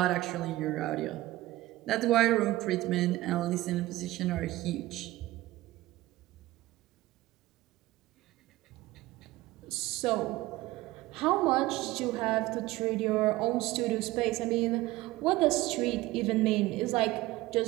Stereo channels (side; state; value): left; quieter; 17.6 dB